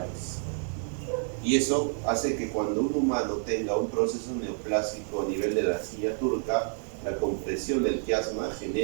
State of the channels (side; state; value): left; silent; 59 dB below the other